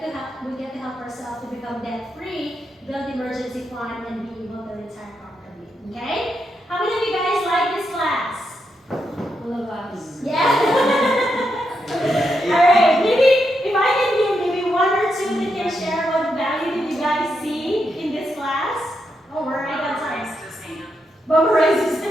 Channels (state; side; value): normal; both; correlation 0.83